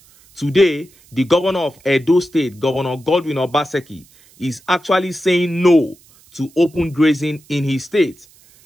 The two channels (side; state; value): right; noise; hiss, 28 dB below the sound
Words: Today, the governor of Edo State, Governor Godwin Obaseki, is actually saying no to open grazing in his state.